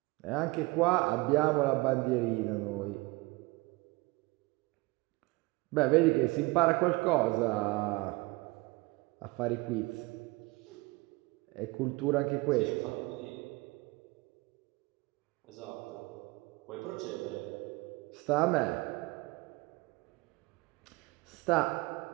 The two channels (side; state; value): left; quieter; 23.6 dB